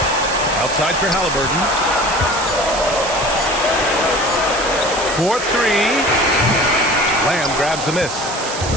Outside for Halliburton. 4-3. Lamb grabs the miss.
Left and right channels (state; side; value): noise; right; hiss, 8 dB below the sound